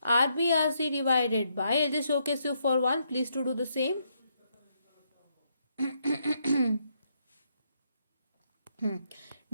RBRC divided by, I'll just showcase you for one, please to do the same.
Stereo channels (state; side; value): inverted; both; correlation -0.76